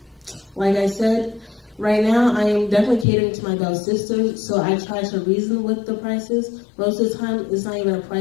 Like I said, right now I am definitely catering to my belle sisters, so I try to reason with the prices. Most of the time, it's not even a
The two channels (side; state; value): right; drops out; at 3.1 s